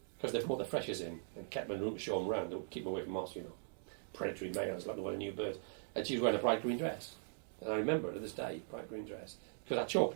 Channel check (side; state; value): left; silent; digital silence